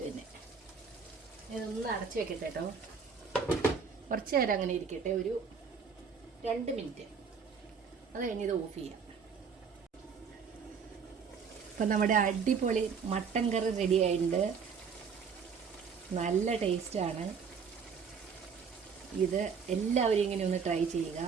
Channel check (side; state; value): left; quieter; 6.1 dB